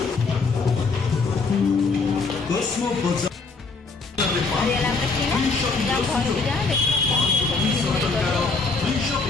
कॉस्मो बाजार ସରିଗଲା ଆମର କିଣା। ଯାଅ ଘରକୁ ଯାଅ।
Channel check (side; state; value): right; quieter; 4.2 dB